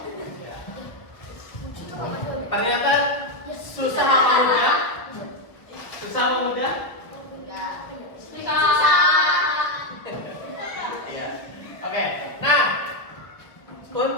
Ternyata susah apa mudah? Susah apa mudah? Iya. Oke. Nah,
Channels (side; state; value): right; late; 1.1 ms